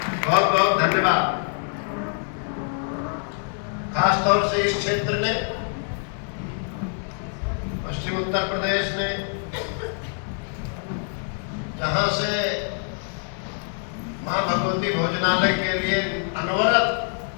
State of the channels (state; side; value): silent; right; 55 dB below the other